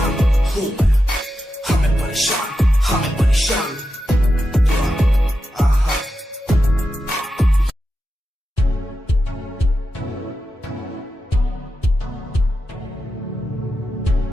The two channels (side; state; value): both; normal; correlation 0.89